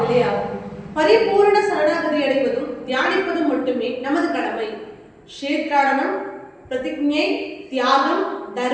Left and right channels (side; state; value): both; identical; correlation 1.00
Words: ஆகும். பரிபூரண சரணாகதி அடைவதும் தியானிப்பதும் மட்டுமே நமது கடமை. க்ஷேத்ராடனம், பிரதிஜை, தியாகம்,